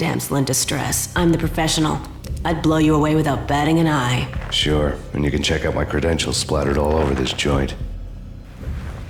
in distress. I'm the professional. I'd blow you away without batting an eye. Sure, and you can check out my credentials splattered all over this joint.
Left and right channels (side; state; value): both; identical; correlation 1.00